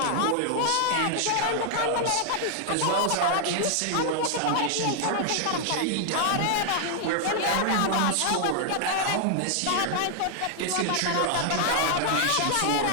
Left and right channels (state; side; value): different; both; correlation 0.00